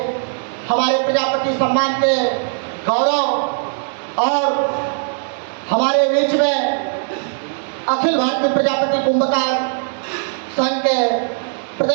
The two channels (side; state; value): left; silent; digital silence